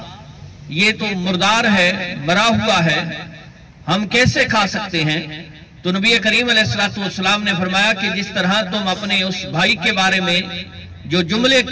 یہ تو مردار ہے، مرا ہوا ہے، ہم کیسے کھا سکتے ہیں؟ تو نبی کریم علیہ السلام نے فرمایا کہ جس طرح تم اپنے اس بھائی کے بارے میں جو جملے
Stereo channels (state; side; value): identical; both; correlation 1.00